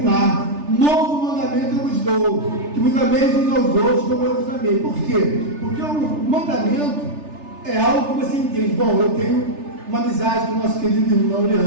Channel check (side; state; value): left; late; 3.3 ms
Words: Novo mandamento eu vos dou, que vos ameis uns aos outros como eu vos amei. Por quê? Porque o mandamento é algo que você entende. Bom, eu tenho uma amizade com o nosso querido irmão